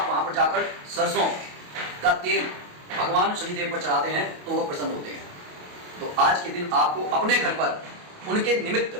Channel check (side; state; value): left; late; 28 ms